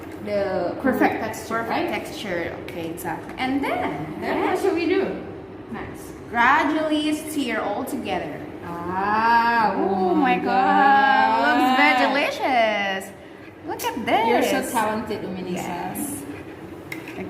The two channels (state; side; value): identical; both; correlation 1.00